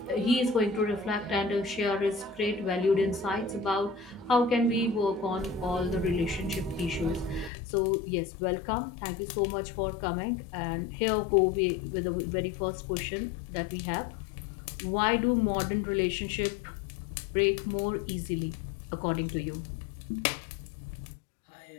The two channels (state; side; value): drops out; right; at 7.5 s